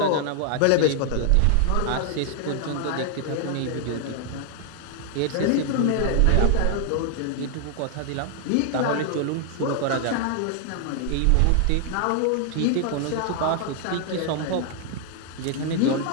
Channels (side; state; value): both; different; correlation 0.00